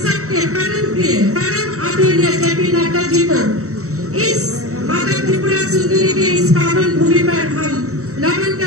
सबके परम प्रिय परम आदरणीय जेपी नड्डा जी को इस माता त्रिपुरा सुंदरी के इस पावन भूमि पर हम नमन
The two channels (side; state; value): left; late; 0.64 ms